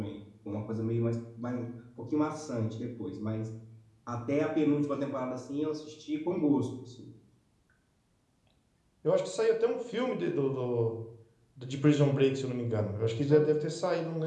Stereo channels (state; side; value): identical; both; correlation 1.00